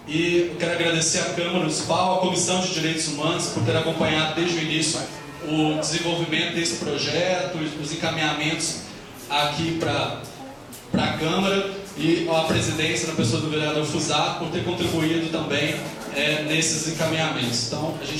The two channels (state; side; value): identical; both; correlation 1.00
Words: E eu quero agradecer à Câmara Municipal, à Comissão de Direitos Humanos, por ter acompanhado desde o início o desenvolvimento desse projeto, os encaminhamentos aqui para a Câmara, e a presidência, na pessoa do vereador Fusato, por ter contribuído também nesses encaminhamentos. Então, a